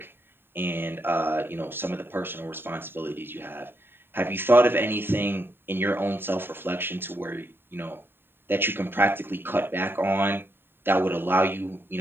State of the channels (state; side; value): late; left; 0.10 ms